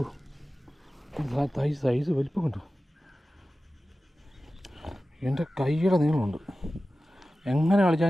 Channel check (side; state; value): both; normal; correlation 0.95